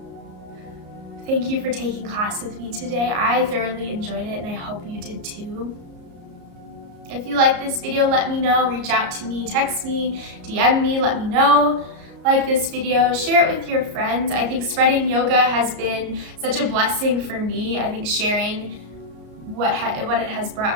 Thank you for taking class with me today. I thoroughly enjoyed it and I hope you did too. If you like this video, let me know. Reach out to me, text me, DM me, let me know. Like this video, share it with your friends. I think spreading yoga has been such a blessing for me. I think sharing what it has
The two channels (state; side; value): late; left; 34 ms